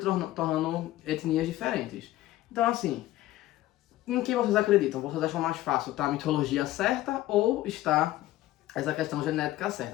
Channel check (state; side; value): quieter; right; 15.7 dB